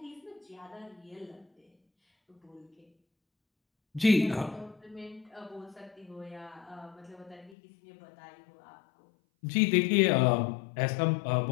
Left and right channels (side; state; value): right; drops out; at 7.6 s